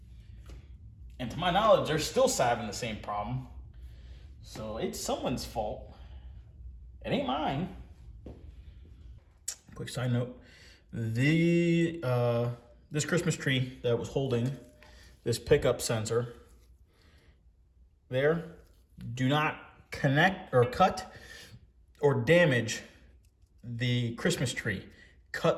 And to my knowledge, they're still having the same problem. So it's someone's fault. It ain't mine. Quick side note. This Christmas tree that was holding this pickup sensor there, do not connect or cut or damage the Christmas tree.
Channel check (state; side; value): identical; both; correlation 1.00